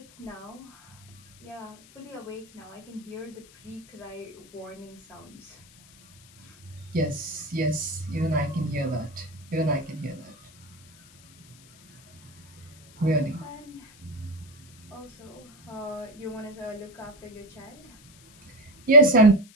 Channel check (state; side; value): noise; left; hiss, 24 dB below the sound